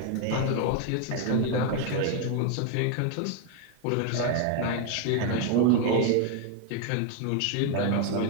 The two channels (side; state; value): both; different; correlation 0.01